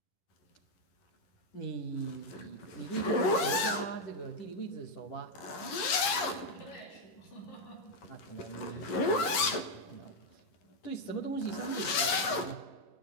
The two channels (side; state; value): right; late; 10 ms